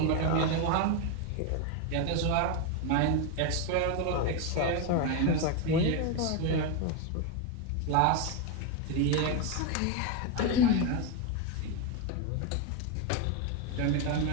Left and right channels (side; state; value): both; different; correlation 0.02